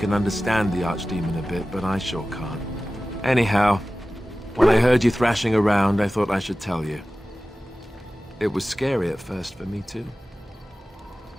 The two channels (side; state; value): both; normal; correlation 0.96